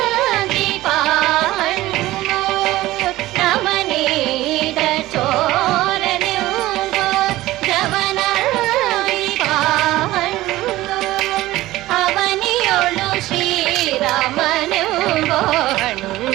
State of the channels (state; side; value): quieter; left; 16.8 dB